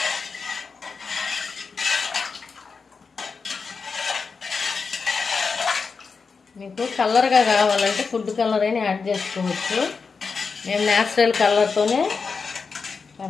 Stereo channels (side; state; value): right; quieter; 5.0 dB